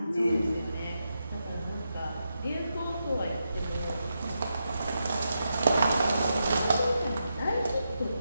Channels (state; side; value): inverted; both; correlation -0.85